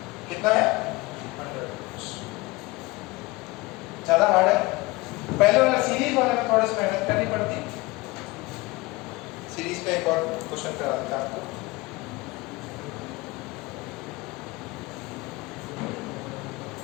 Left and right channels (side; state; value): right; quieter; 22.2 dB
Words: कितना है, 100 वोल्ट्स। ज्यादा हार्ड है, पहले वाला सीरीज वाले में थोड़ा सा मेहनत करनी पड़ती। सीरीज का एक और क्वेश्चन करा देता हूं आपको।